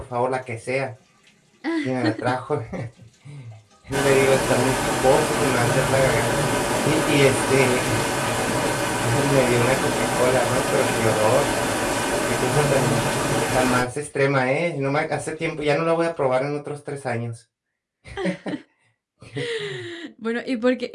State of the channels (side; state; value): both; identical; correlation 1.00